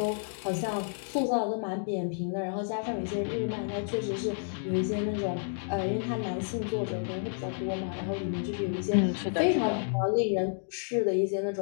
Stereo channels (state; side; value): silent; right; digital silence